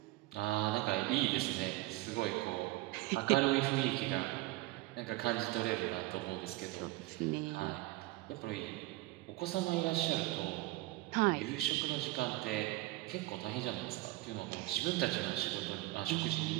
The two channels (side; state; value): left; quieter; 19.4 dB